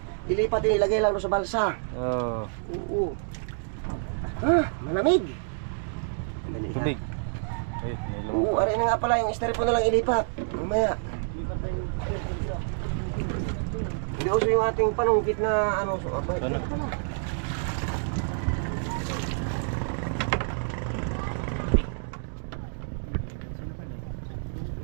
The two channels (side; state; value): left; silent; digital silence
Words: ilipat din, ilagay lang doon sa balsa. Oo. Oo. Malamig. Madali lang. Tubig. Ay, may Oo, lumang. aray na nga pala, yung styrofoam na lang ilipat. Mamaya. Hindi uso yung ating panungkit na ano. So, abay, Ano? pala.